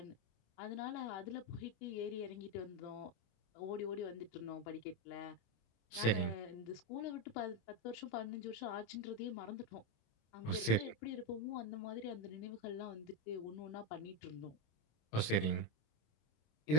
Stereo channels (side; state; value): right; late; 26 ms